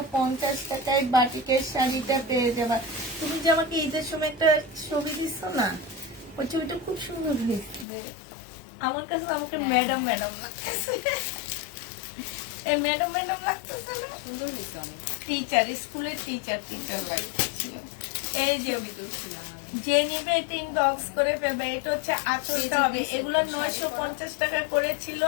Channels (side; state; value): right; drops out; at 7.9 s